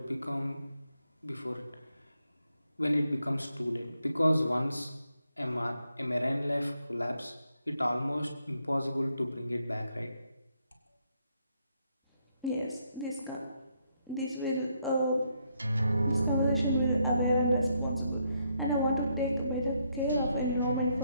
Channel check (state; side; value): inverted; both; correlation -0.77